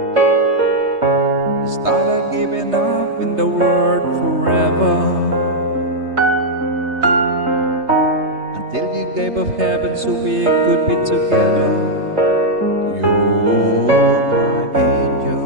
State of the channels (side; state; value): left; late; 3.3 ms